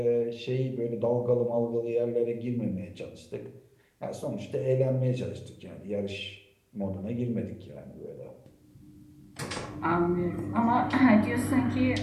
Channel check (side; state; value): both; identical; correlation 1.00